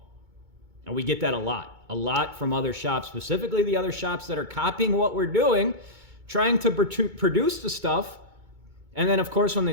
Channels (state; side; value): late; left; 2.2 ms